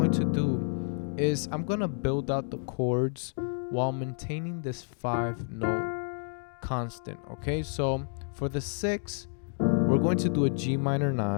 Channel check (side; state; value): right; silent; 58 dB below the other